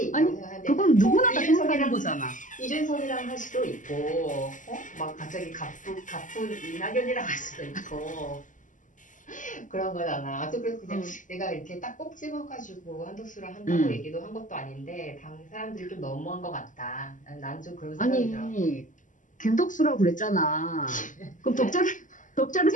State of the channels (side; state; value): right; late; 0.37 ms